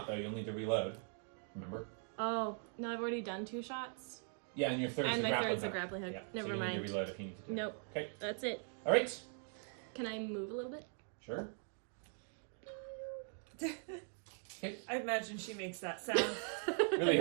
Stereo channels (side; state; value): left; silent; 50 dB below the other